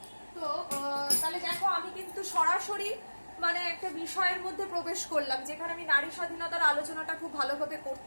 তো তাহলে দেখো আমি কিন্তু সরাসরি মানে একটা বিষয়ের মধ্যে প্রবেশ করলাম যেখানে আমি নারী স্বাধীনতার আলোচনাটা খুব ভালোভাবে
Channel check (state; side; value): inverted; both; correlation -1.00